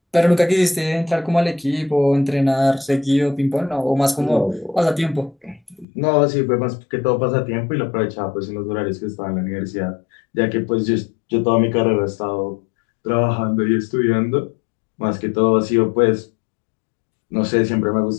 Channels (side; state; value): right; drops out; at 5.9 s